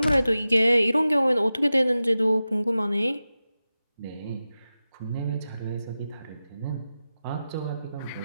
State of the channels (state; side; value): inverted; both; correlation -0.94